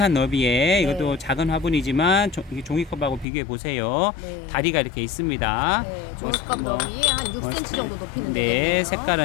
너비에 네. 이것도 작은 화분이지만 종이컵하고 비교해 보세요. 네. 다리가 이렇게 있습니다. 네. 종이컵 너비에 한 6cm 정도 높이는 네, 되겠네요.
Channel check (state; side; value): drops out; right; at 3.2 s